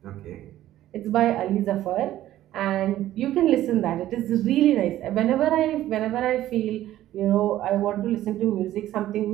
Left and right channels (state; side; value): quieter; left; 13.6 dB